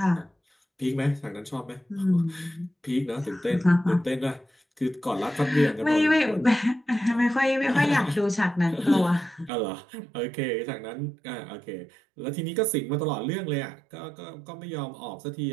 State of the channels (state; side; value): drops out; left; at 9.5 s